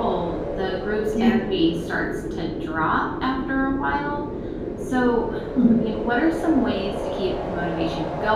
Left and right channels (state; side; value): identical; both; correlation 1.00